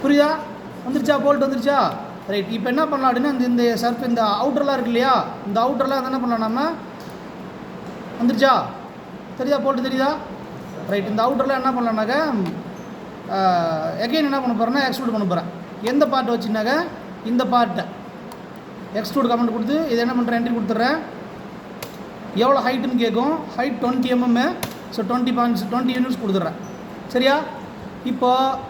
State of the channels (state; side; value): identical; both; correlation 1.00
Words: புரியுதா? வந்துருச்சா? போல்ட் வந்துருச்சா? ரைட். இப்போ என்ன பண்ணலாம் அப்படின்னா இந்த அவுட்டர்லாம் இருக்கு இல்லையா, இந்த அவுட்டர்லாம் என்ன பண்ணலாம், நம்ம வந்துருச்சா? தெரியுதா? போல்ட்டு தெரியுதா? ரைட். இந்த அவுட்டர்லாம் என்ன பண்ணலான்னாக்க எகைன் என்ன பண்ண போகிறேன்னா எக்ஸ்ட்ரூட் பண்ண போகிறேன். எந்த பார்ட்டை வச்சுனாக்க இந்த பார்ட்டை எக்ஸ்ட்ரூட் கமெண்ட் கொடுத்து இதை என்ன பண்ணுறேன், என்ட்ரி கொடுத்துட்றேன். எவ்வளோ ஹைட்டுன்னு கேட்கும். Height 20 mm. ஸோ 20 யூனிட்ஸ் கொடுத்துட்றேன், சரியா?